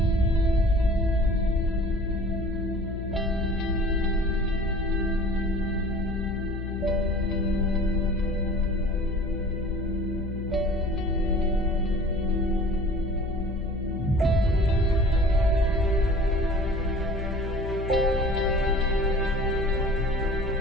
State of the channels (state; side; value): noise; left; hum, 6 dB below the sound